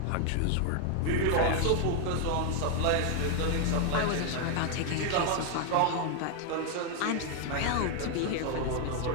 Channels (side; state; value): both; different; correlation 0.00